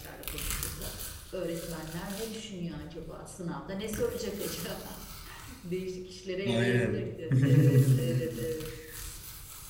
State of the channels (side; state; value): both; identical; correlation 1.00